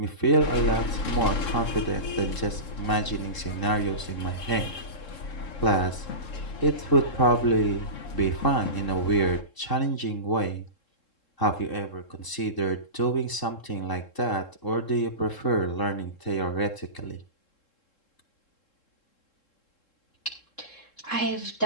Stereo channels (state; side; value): late; right; 3.7 ms